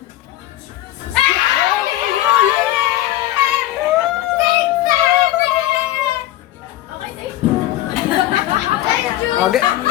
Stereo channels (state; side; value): quieter; right; 14.9 dB